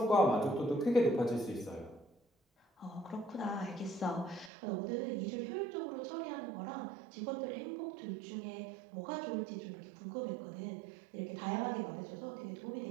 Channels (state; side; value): drops out; left; at 4.5 s